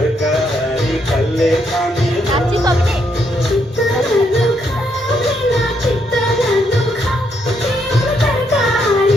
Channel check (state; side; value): normal; both; correlation 0.76